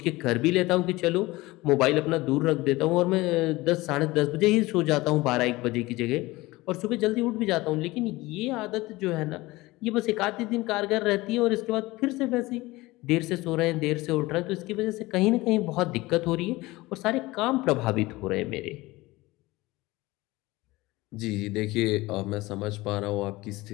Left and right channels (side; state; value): right; quieter; 20.3 dB